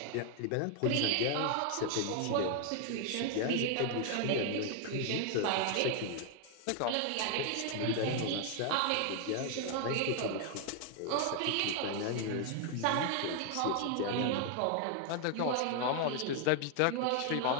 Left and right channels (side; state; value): both; different; correlation 0.00